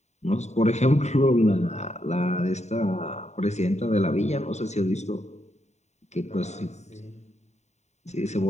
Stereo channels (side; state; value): right; late; 0.33 ms